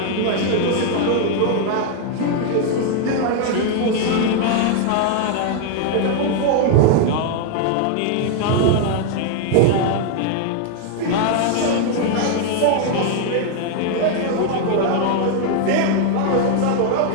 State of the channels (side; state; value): both; different; correlation 0.00